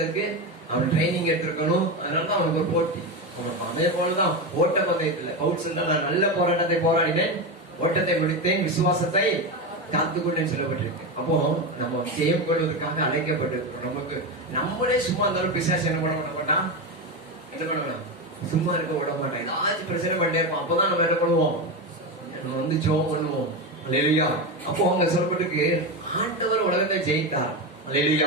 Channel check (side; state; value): both; normal; correlation 0.16